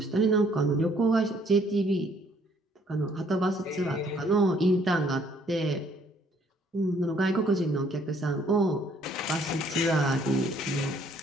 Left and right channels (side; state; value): both; normal; correlation 0.63